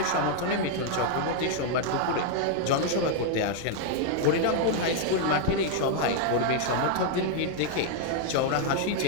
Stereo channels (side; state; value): both; different; correlation 0.00